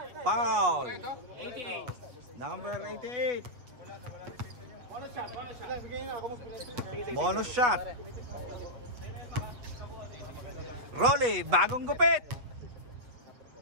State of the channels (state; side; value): late; left; 7.8 ms